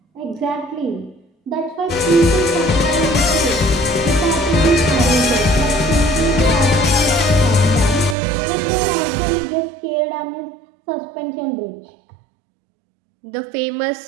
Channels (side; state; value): left; drops out; at 8.2 s